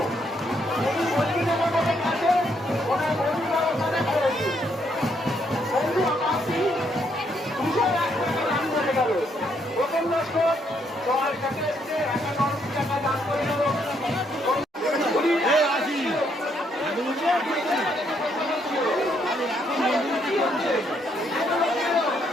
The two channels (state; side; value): normal; both; correlation 0.73